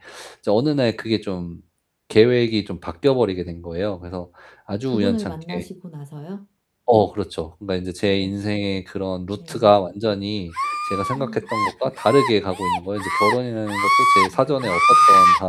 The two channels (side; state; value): both; identical; correlation 1.00